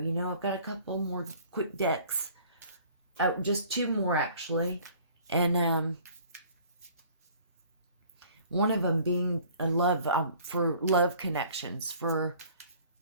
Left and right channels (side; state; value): both; inverted; correlation -0.53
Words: You know, I've got a couple more quick decks. Just 2 more actually. And one of them being a love... for love connections. For